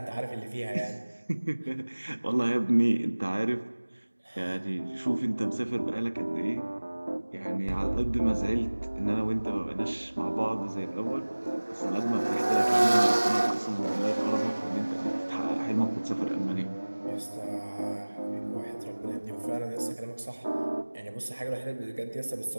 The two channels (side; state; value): both; inverted; correlation -1.00